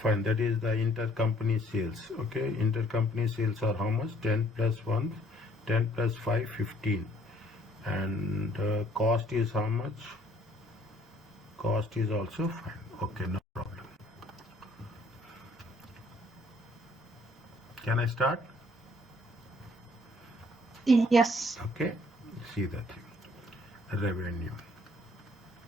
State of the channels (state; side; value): normal; both; correlation 0.61